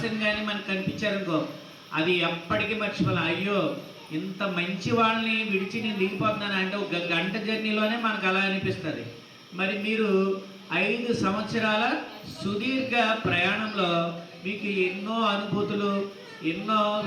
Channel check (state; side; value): identical; both; correlation 1.00